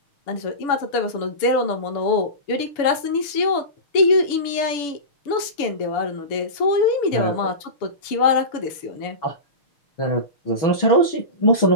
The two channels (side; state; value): right; late; 7.0 ms